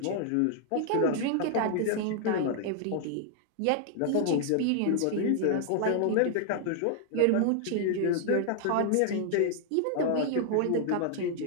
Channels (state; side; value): different; both; correlation 0.00